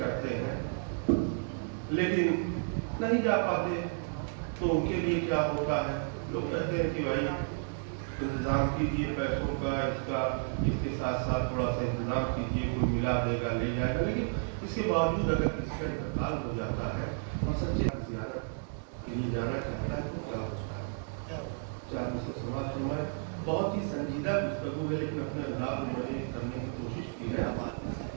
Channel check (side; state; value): left; silent; digital silence